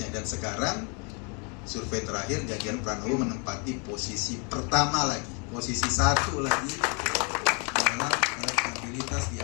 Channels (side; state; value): right; quieter; 35.0 dB